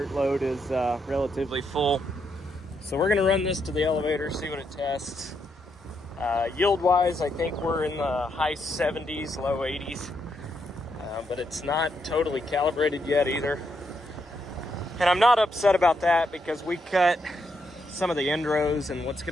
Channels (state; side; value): normal; both; correlation 0.79